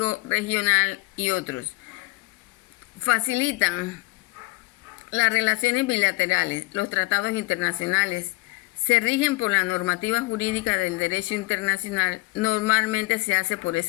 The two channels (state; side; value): quieter; right; 23.1 dB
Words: regional y otros. Facilitan las relaciones bilaterales. Los tratados internacionales se rigen por la normativa jurídica del derecho internacional. Normalmente se hace por